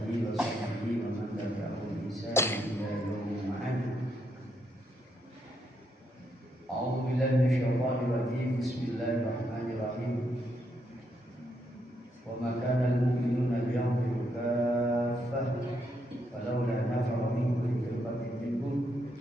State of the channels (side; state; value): both; normal; correlation 0.78